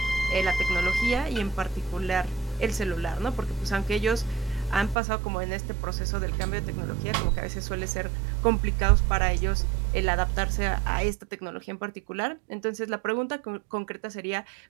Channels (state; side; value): drops out; left; at 5.0 s